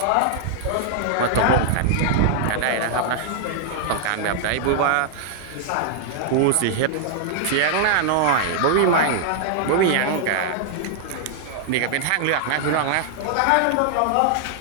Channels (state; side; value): different; both; correlation 0.00